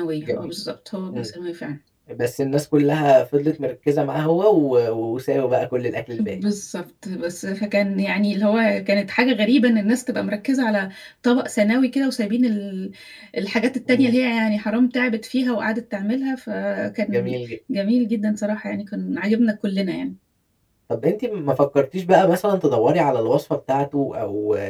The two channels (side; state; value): both; identical; correlation 1.00